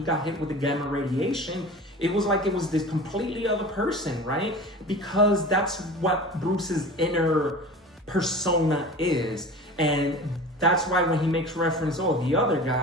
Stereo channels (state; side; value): normal; both; correlation 0.36